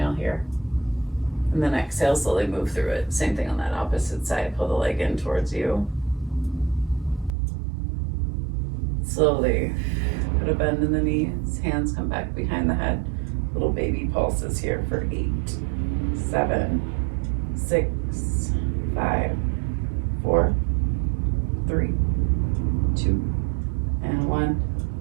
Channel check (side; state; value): left; drops out; at 7.3 s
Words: here. And then exhale, slowly move through it. Same thing on that opposite side. Pull the leg in towards you. Slowly put a bend in the knees. Hands come back behind the head. Little baby pulses here for 8, 7, 6, 5, 4, 3, 2, and 1.